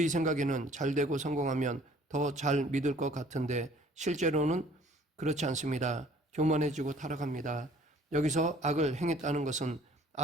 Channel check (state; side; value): normal; both; correlation 0.55